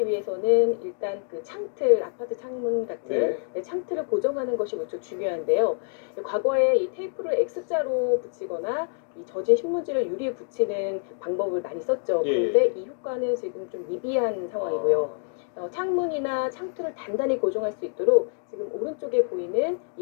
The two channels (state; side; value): silent; right; 61 dB below the other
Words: 위해서는 일단 그 창틀, 아파트 창문 같은 창틀을 고정하는 것이 무척 중요한데요. 과거에 이 테이프를 X자로 붙이거나 이 젖은 신문지를 유리에 붙이는 방법을 많이 썼죠. 예. 그런데 이 효과는 지금 좀 미비한 상황이고요. 창문이나 창틀을 단단히 고정할 수 있도록 지금 오른쪽에 보이는